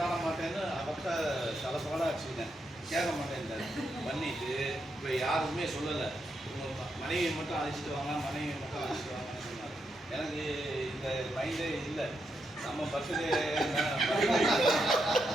மாட்டேன்னு அவர்கிட்ட தலப்பாடாக வச்சுக்கிட்டேன். கேட்க மாட்டேன் பண்ணிட்டு இப்போ யாருக்குமே சொல்லலை. மனைவியை மட்டும் அழைச்சிட்டு வாங்க, மனைவியை மட்டும் அழைச்சிட்டு வாங்கன்னு சொன்னார். எனக்கு இந்த மைண்டே இல்லை. நம்ம பர்த்டே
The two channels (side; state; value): both; normal; correlation 0.82